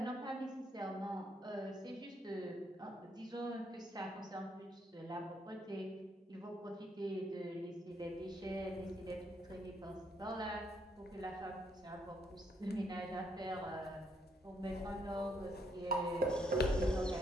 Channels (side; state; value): both; normal; correlation 0.73